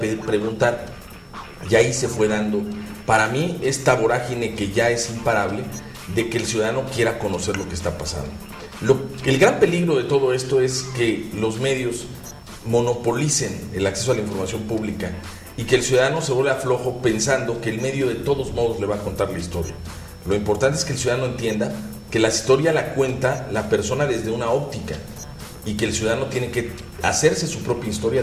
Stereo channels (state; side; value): identical; both; correlation 1.00